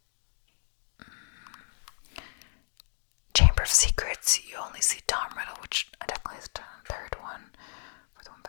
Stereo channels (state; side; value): silent; right; 57 dB below the other